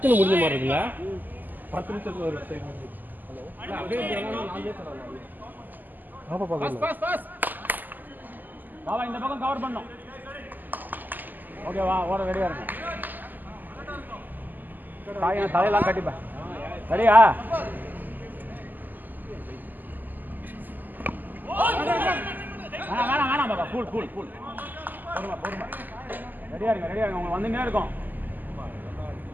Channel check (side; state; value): left; late; 0.086 ms